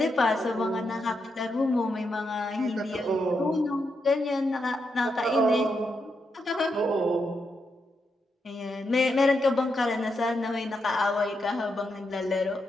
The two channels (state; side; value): normal; both; correlation 0.83